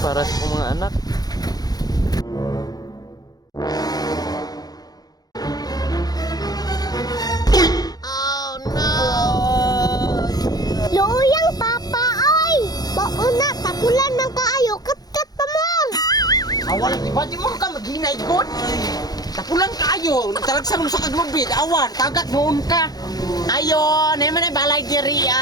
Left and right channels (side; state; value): right; late; 0.19 ms